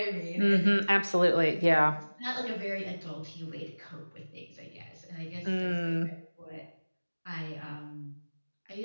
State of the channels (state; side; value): inverted; both; correlation -1.00